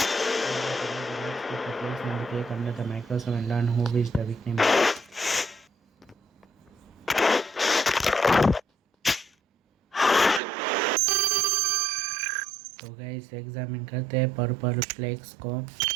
cake under the microscope and learn who is the victim. तो गाइस एग्जामिन करते हैं पर्पल फ्लेक्स को और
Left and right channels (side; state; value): left; drops out; at 10.4 s